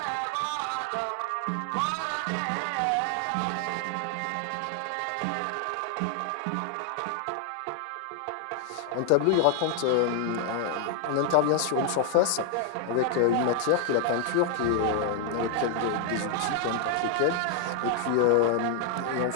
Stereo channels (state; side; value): different; both; correlation 0.00